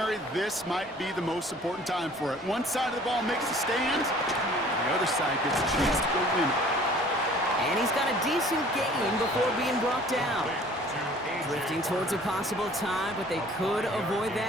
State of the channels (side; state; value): both; normal; correlation 0.51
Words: this might be the most important time for it. One side of the ball makes a stand, and the other side gets a chance to go win it. And he's got a decent gain before being brought down. Drifting towards a possible tie, but they could avoid